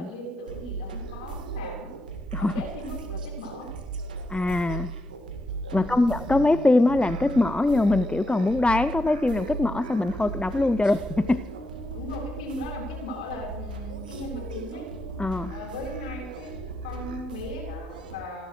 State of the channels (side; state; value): both; normal; correlation 0.82